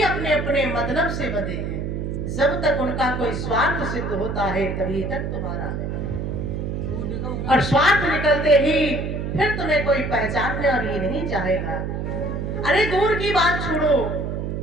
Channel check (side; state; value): right; noise; hum, 3 dB below the sound